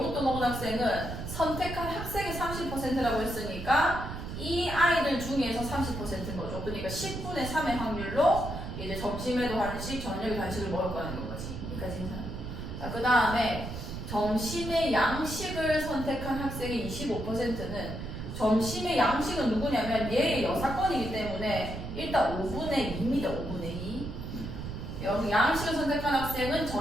먹은 학생은 선택한 학생의 30%라고 했으니까 이 아이들 중에서 30%인 거죠. 그러니까 10분의 3의 확률로 이제 점심에도 한식, 저녁에도 한식을 먹을 거라는 거지. 여기까지 괜찮아. 자, 그 다음에 점심에 양식을 선택한 학생의 25%는 점심에 양식은 누구냐면 얘의 여사건이기 때문에 일단 5분의 2입니다. 5분의 2. 여기 양식을 선택한 학생은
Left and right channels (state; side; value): noise; right; rumble, 7 dB below the sound